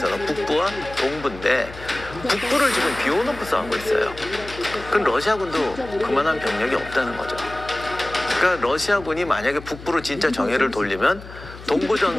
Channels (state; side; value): noise; left; hum, 15 dB below the sound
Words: 북부와 동부인데 북부를 지금 비워놓고 싸우고 있어요. 그럼 러시아군도 그만한 병력이 없다는 거죠. 그러니까 러시아군이 만약에 북부로 진짜 정예를 돌리면 동부